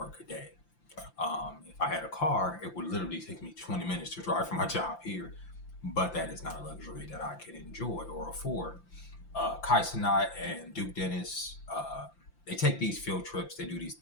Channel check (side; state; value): right; late; 5.8 ms